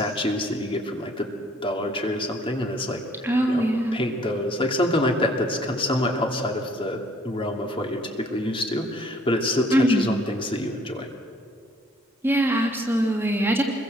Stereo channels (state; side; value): normal; both; correlation 0.60